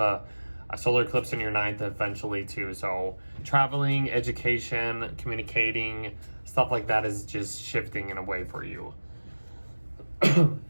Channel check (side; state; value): both; inverted; correlation -1.00